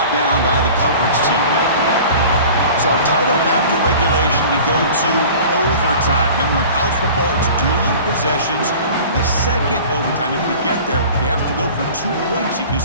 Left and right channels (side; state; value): both; inverted; correlation -0.42